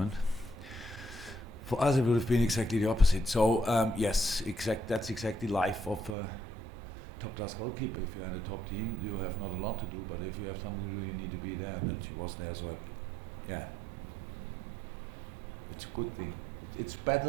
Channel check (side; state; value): left; drops out; at 6.2 s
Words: For us, it would have been exactly the opposite. So yes, that's exactly life of a top-class goalkeeper. If you're in a top team, you have not a lot to do, but if you have something to do, you need to be there, and that he was there. So yeah, it's a good thing. It's